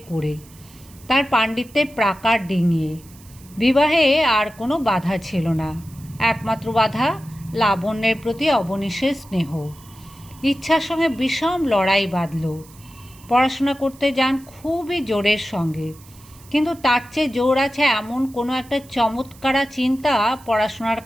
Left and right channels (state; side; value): noise; right; hiss, 24 dB below the sound